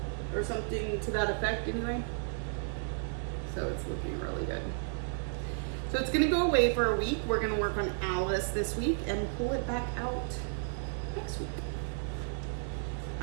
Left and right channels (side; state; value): left; silent; digital silence